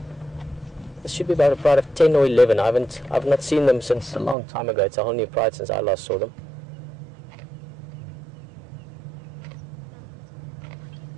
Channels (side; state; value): left; drops out; at 4.4 s